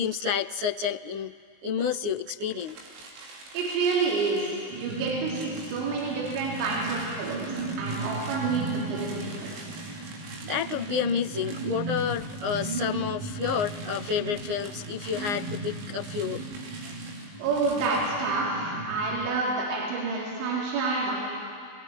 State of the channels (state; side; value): late; left; 19 ms